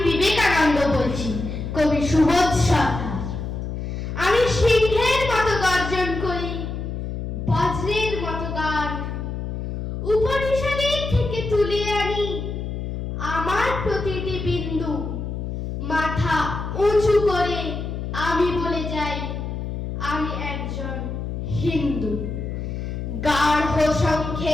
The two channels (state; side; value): noise; left; hum, 5 dB below the sound